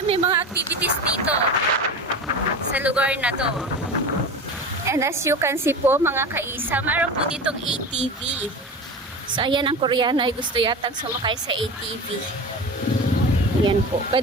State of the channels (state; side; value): normal; both; correlation 0.29